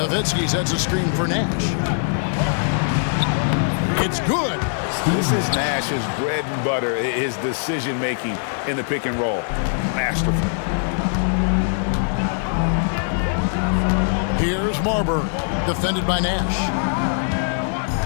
sets a screen for Nash. It's good. This is Nash's bread and butter, his decision-making in the pick and roll. Masterful. Here's Marbury, defended by Nash.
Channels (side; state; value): right; silent; 57 dB below the other